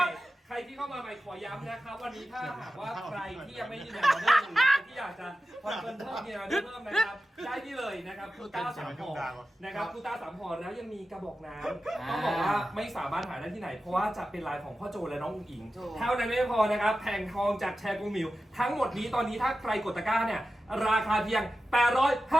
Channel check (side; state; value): both; normal; correlation 0.93